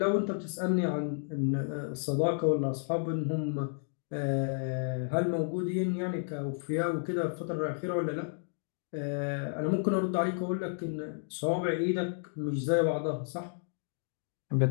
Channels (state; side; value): silent; right; digital silence